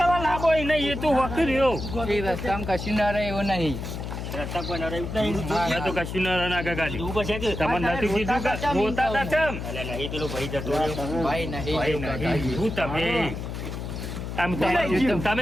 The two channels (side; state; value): left; noise; hum, 6 dB below the sound